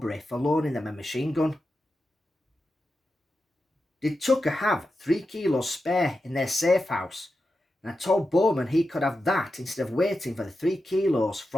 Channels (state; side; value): normal; both; correlation 0.90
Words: for loaning them a machine gun. Did Tucker have 3 kilos spare in their safe house and told Bowman he could have that instead of waiting for the 3 kilos